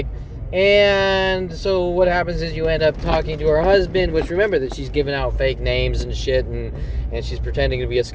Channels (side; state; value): both; identical; correlation 1.00